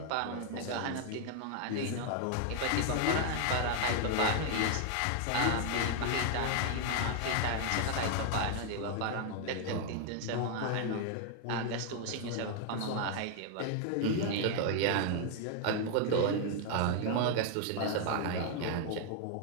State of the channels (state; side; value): different; both; correlation 0.00